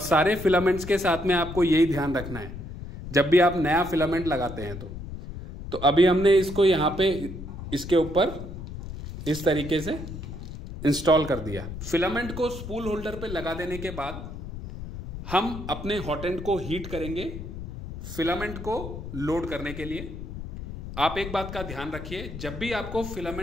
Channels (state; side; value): noise; left; rumble, 9 dB below the sound